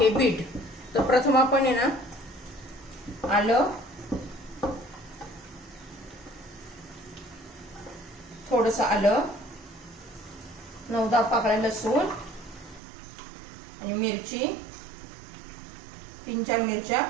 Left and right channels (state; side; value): drops out; left; at 12.8 s